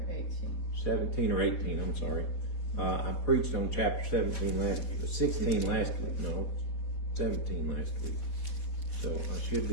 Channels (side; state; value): right; late; 4.7 ms